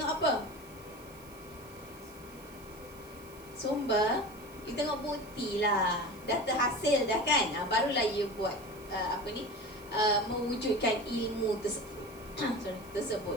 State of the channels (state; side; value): noise; right; hiss, 22 dB below the sound